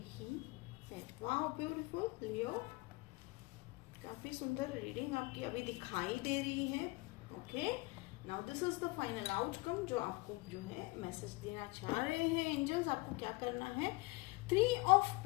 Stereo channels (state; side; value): quieter; right; 24.1 dB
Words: ही है। वाह ब्यूटीफुल लियो, काफी सुंदर रीडिंग आपकी अभी दिखाई दे रही है। Okay, now this is the final outcome जो आपको जो है मैसेज देना चाह रहे हैं एंजल्स। आपको क्या करना है, 3 ऑफ